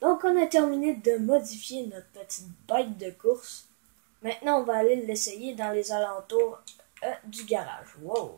Donc, on a terminé de modifier notre petite bête de course. Maintenant, on va aller l'essayer dans les alentours du garage. Wow.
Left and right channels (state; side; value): silent; left; digital silence